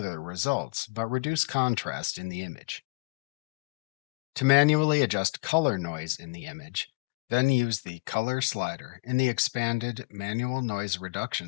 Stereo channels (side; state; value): right; quieter; 29.8 dB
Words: results but reduce contrast in the image. To manually adjust color noise in the image, then use the Color slider in the expanded Manual Noise